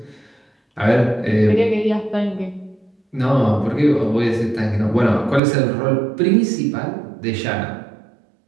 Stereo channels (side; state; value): left; drops out; at 5.4 s